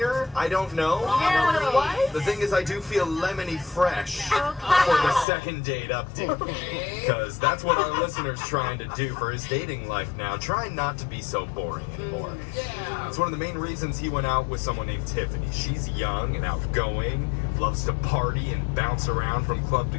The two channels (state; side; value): drops out; right; at 5.2 s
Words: I don't know. You know what it was? The thing is, I do feel lemony fresh for the second date update. Because that's what our listener's trying to do for his dating life now. Trying not to be so boring anymore. It's one of the main reasons he went out with someone named Tiffany. She's young and outgoing, loves to party and bounce around from club to